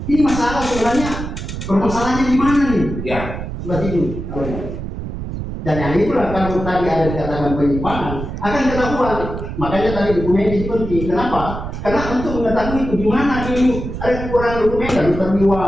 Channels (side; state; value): right; noise; rumble, 7 dB below the sound